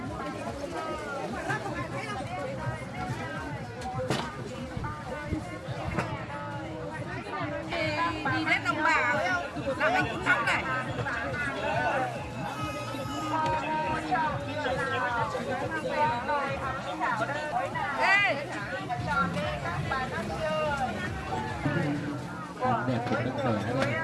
Đi đến đồng bào là mình cũng sống này. Ê! Hàng đẹp của các bé này.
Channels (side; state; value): both; identical; correlation 1.00